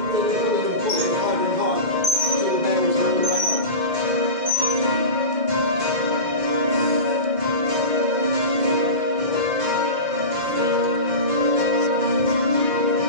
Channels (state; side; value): late; left; 2.1 ms